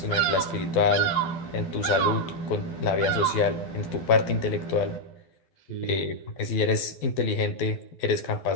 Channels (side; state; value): right; late; 12 ms